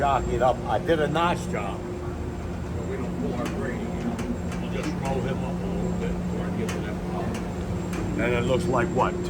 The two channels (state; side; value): identical; both; correlation 1.00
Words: it up. I did a notch job. So we don't pull our grading out. You just roll him up a little bit before I get to that bottom. And it looks like what?